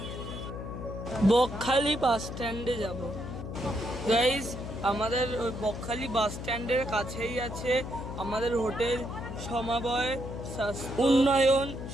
বকখালি বাস স্ট্যান্ডে যাব। গাইস আমাদের ওই বকখালি বাস স্ট্যান্ডের কাছেই আছে আমাদের হোটেল সমবায় উন্নয়ন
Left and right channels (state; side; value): noise; left; hum, 8 dB below the sound